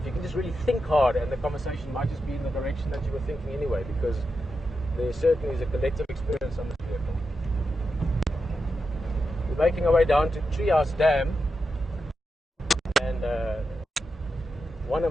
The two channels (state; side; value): normal; both; correlation 0.88